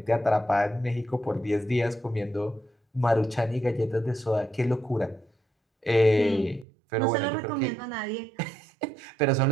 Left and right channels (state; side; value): drops out; left; at 6.7 s